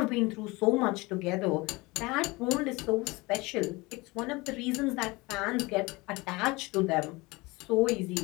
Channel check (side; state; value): right; quieter; 23.5 dB